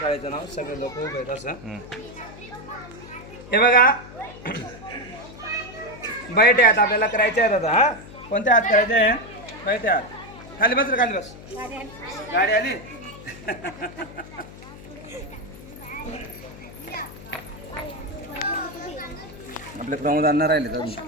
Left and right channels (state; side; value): noise; left; hum, 16 dB below the sound